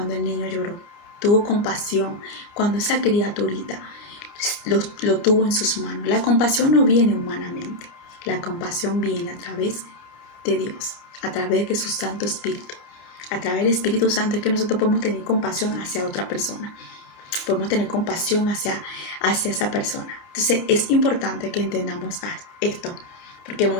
el niño lloró. Tuvo compasión cuando esa criaturita lo tuvo en sus manos. La compasión no viene humanamente. La compasión viene a través de Dios, a través de su Santo Espíritu. A través del Espíritu Santo es que nosotros podemos tener compasión hacia otra persona. Podemos tener compasión hacia esa persona. Entonces es importante que entendamos esto, porque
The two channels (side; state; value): right; late; 30 ms